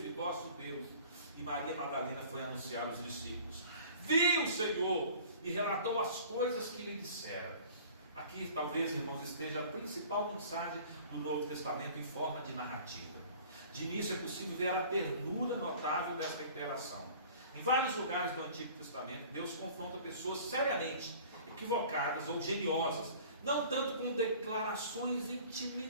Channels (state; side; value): inverted; both; correlation -0.47